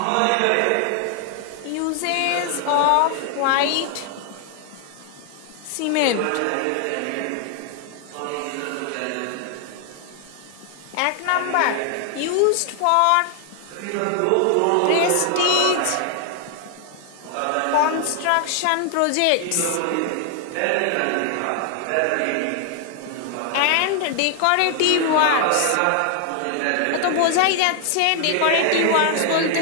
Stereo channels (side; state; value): both; different; correlation 0.00